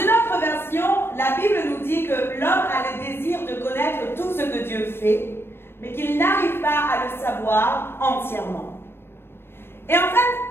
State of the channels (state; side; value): late; right; 0.11 ms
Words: autre version, la Bible nous dit que l'homme a le désir de connaître tout ce que Dieu fait, mais qu'il n'arrive pas à le savoir entièrement. Et en